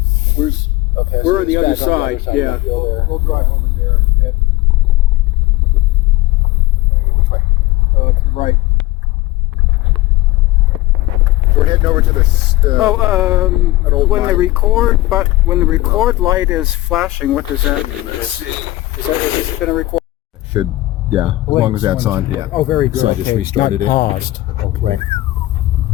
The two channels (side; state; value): right; quieter; 18.1 dB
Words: Okay, We're so on the it's other back side. on the Yeah, other side of that hill there. we'll drive over there. Yeah. Which way? To the right. So we're heading over to the an old When the mine. record light is flashing, what does that mean? Is this going to record? Should, yeah, as long as that's on, yeah. Oh, very good. So I just restarted it. Paused. Okay. Right.